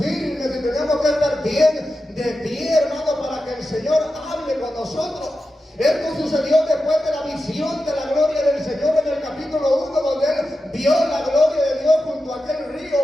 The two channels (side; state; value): both; normal; correlation 0.91